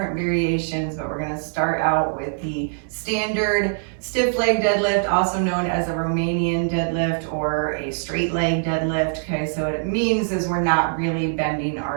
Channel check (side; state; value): left; silent; 63 dB below the other